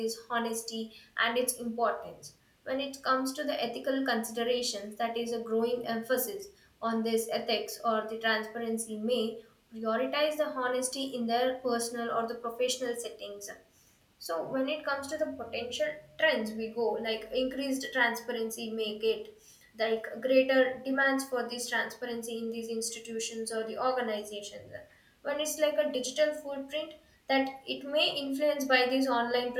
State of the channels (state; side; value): identical; both; correlation 1.00